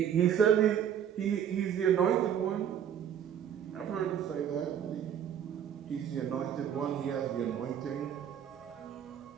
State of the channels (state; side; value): quieter; left; 9.1 dB